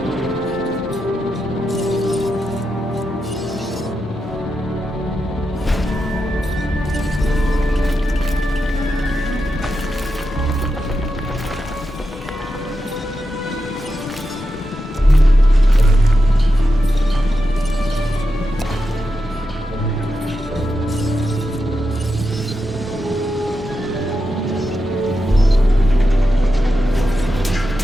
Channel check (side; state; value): both; normal; correlation 0.88